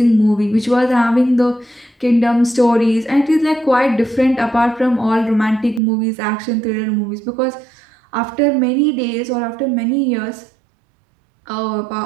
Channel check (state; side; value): drops out; left; at 5.8 s